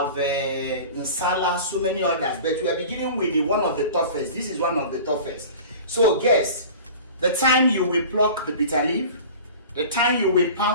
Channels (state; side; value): inverted; both; correlation -0.39